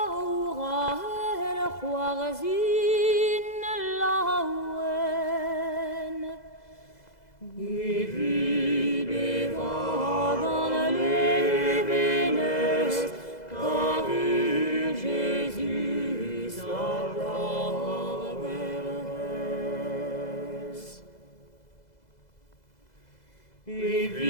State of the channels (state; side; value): late; right; 2.0 ms